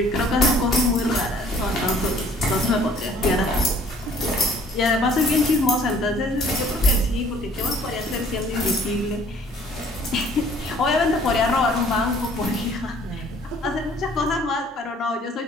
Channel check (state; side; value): normal; both; correlation 0.56